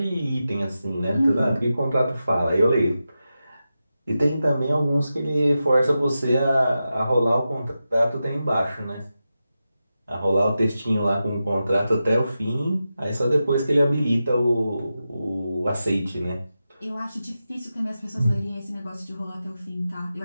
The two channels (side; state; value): both; inverted; correlation -0.91